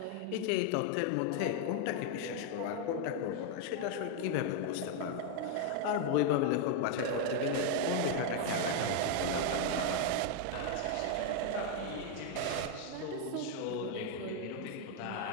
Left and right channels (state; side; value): different; both; correlation 0.00